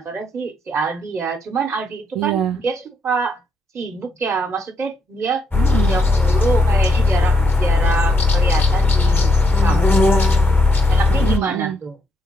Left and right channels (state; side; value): normal; both; correlation 0.76